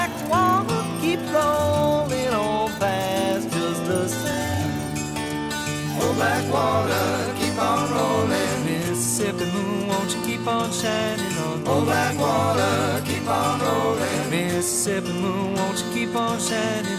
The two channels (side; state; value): both; identical; correlation 1.00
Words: water keep rolling on past just the same. Oh, black water, keep on rolling. Mississippi moon, won't you keep on shining on me? Oh, black water, keep on rolling. Mississippi moon, won't you keep on